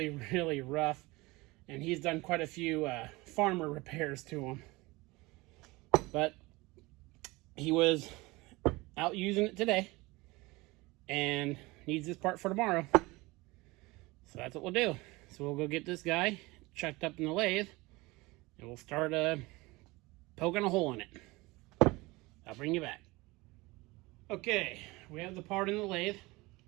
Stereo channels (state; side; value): quieter; left; 22.5 dB